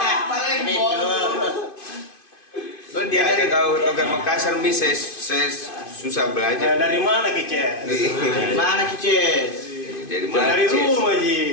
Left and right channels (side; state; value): right; late; 2.5 ms